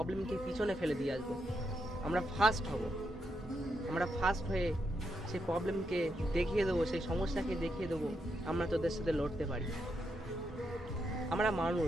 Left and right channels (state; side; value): normal; both; correlation 0.81